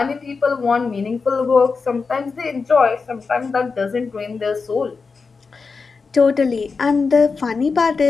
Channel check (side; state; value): right; quieter; 4.7 dB